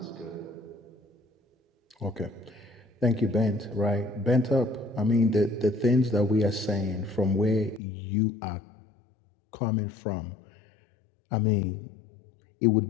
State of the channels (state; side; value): drops out; right; at 7.8 s